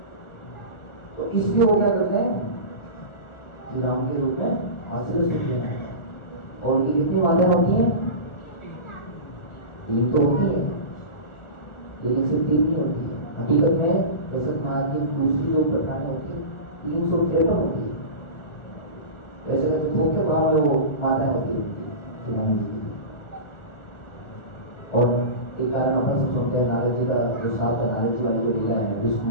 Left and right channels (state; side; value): late; right; 1.4 ms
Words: तो इसलिए वो क्या करते हैं, श्री राम के रूप में वास्तविक सुख लेना है। और उनकी कितनी बातें होती हैं, 3 तो होती है, लेकिन सिर्फ 3 नहीं होती है। हकीकत में दशरथ महाराज की दूसरी जो प्रकार होती है 353 होती है। वैसे तो थोक के भाव में वो माताएं होती है श्री राम जी की। और एक कारण अपन सब सुनते हैं, नारद जी का जो साथ है, नारद जी वाली जो लीला है विष्णु